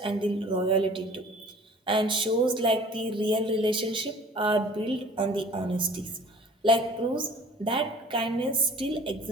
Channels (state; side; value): normal; both; correlation 0.48